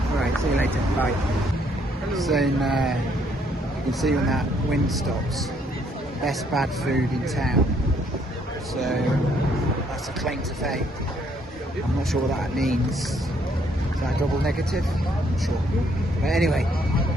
Right, see you later. Bye. So you can see when that wind stops, best bad food in town. So that's a claim to fame. I'm not sure what that means. Is that a double negative? I'm not sure. But anyway,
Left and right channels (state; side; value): normal; both; correlation 0.68